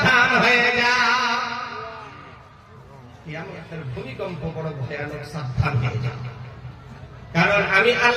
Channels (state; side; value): identical; both; correlation 1.00